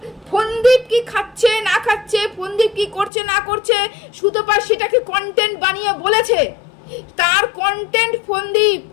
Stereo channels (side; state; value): right; drops out; at 3.1 s